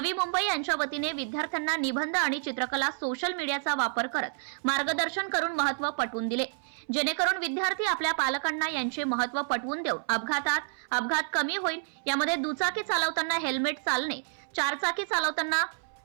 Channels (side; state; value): left; silent; 58 dB below the other